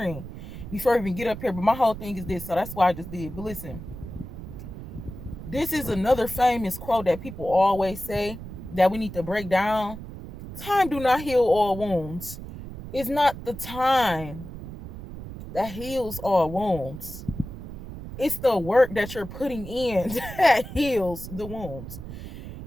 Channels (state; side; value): noise; right; rumble, 11 dB below the sound